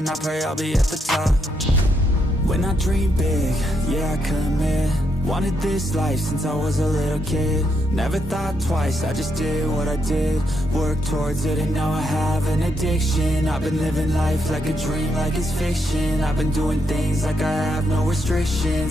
I pray I'll be at the top. When I dream big, yeah I commit. Wanted this life since I was a little kid. Never thought twice, I just did what I did. Worked towards it and now I have an addiction. I've been living life like a dream, like it's fiction. I've been doing things like I have no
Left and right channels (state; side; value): normal; both; correlation 0.78